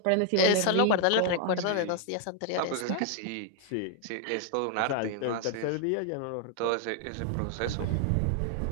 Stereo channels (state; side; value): different; both; correlation 0.00